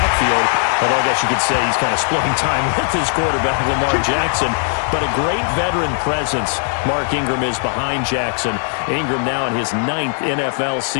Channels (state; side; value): silent; right; 55 dB below the other